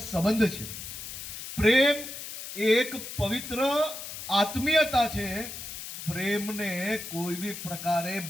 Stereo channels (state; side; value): noise; left; hiss, 9 dB below the sound